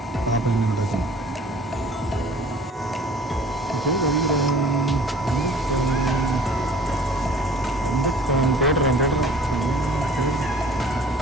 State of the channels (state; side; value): normal; both; correlation 0.49